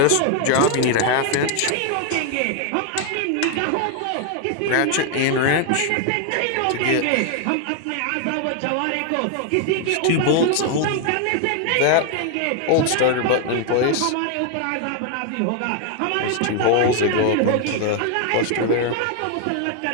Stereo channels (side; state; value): both; different; correlation 0.00